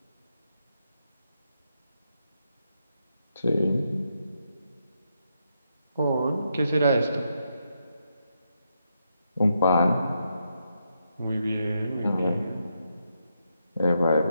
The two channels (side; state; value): both; inverted; correlation -0.82